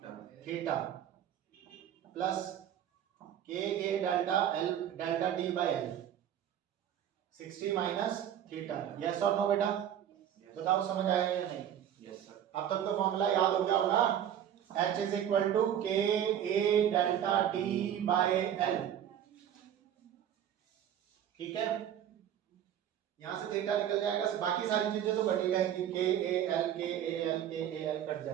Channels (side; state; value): left; quieter; 10.2 dB